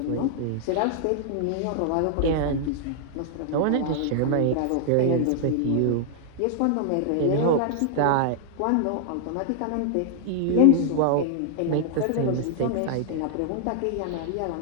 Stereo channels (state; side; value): different; both; correlation -0.01